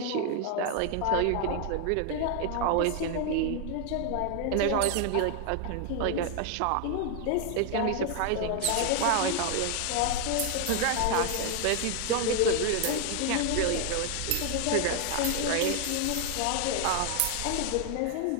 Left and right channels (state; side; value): different; both; correlation 0.00